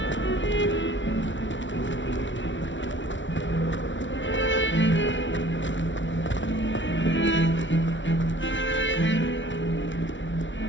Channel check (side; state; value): right; late; 0.55 ms